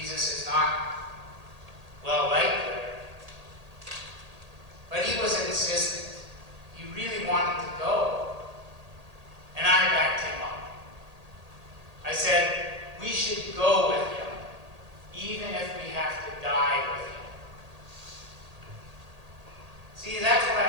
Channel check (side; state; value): left; late; 1.8 ms